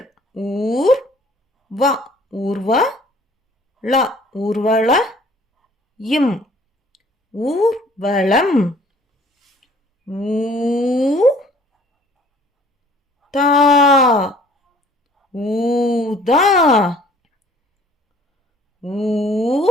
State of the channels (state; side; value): normal; both; correlation 0.55